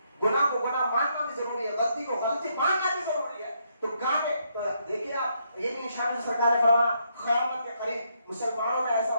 گناہ کو گناہ ماننا بھی ضروری ہے, غلطی کو غلطی ماننا بھی ضروری ہے. تو گانے تو دیکھیے آپ, یہ بھی نشانی سرکار نے فرمایا قیامت کے قریب مسلمانوں میں ایسا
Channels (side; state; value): both; inverted; correlation -0.75